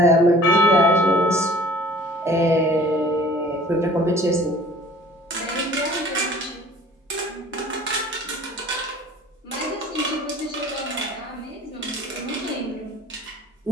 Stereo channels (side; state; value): both; normal; correlation 0.49